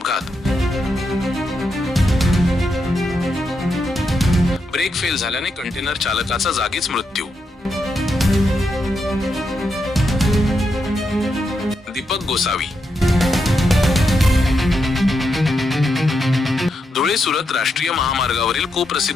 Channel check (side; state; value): both; normal; correlation 0.83